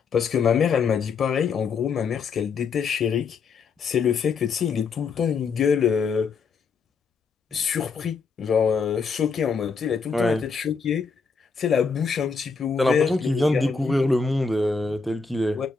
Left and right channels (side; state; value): right; quieter; 5.1 dB